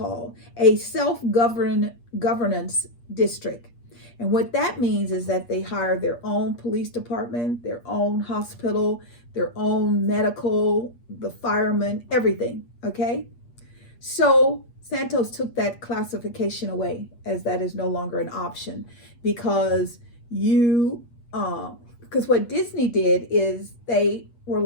self-governance district. And what that means is that they hire their own police department, their own hospital, their own medical, the firemen, everything, okay? So Santos took that classification away, as that is no longer an option, because what Disney did is they were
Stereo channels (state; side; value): late; right; 8.4 ms